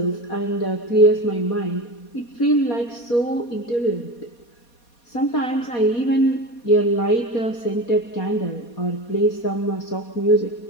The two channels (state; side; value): late; right; 4.2 ms